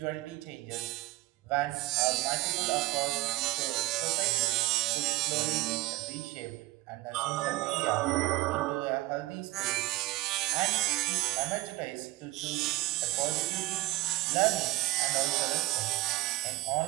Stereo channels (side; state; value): left; quieter; 19.0 dB